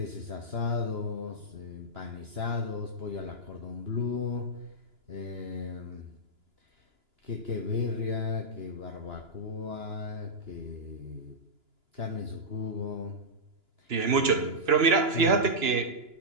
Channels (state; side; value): late; left; 2.9 ms